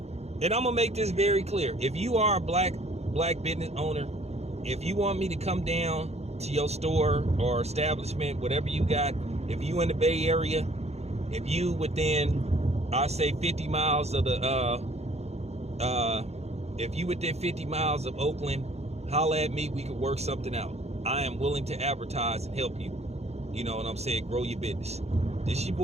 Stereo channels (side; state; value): left; late; 0.31 ms